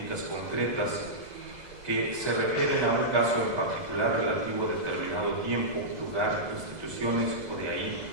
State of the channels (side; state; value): left; late; 2.0 ms